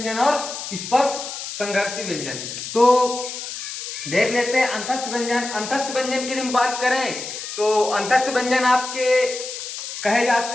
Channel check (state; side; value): noise; left; hiss, 8 dB below the sound